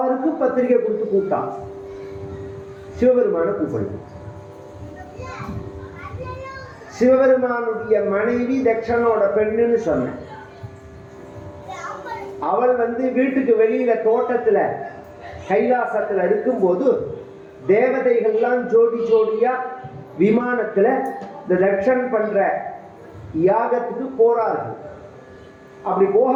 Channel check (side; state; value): both; identical; correlation 1.00